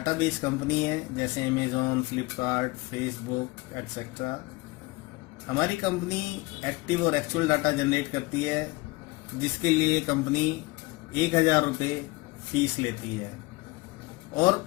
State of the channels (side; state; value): right; quieter; 23.2 dB